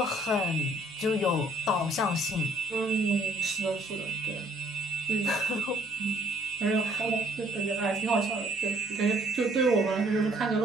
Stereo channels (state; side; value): noise; right; hum, 30 dB below the sound